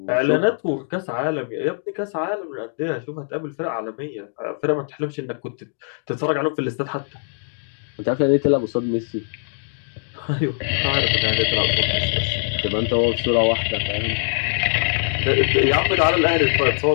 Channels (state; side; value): silent; right; digital silence